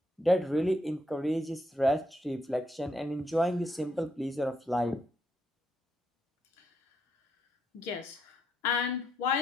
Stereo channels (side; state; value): both; normal; correlation 0.77